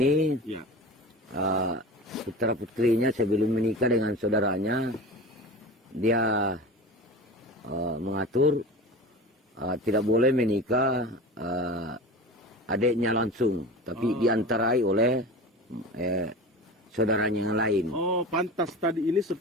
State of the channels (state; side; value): normal; both; correlation 0.33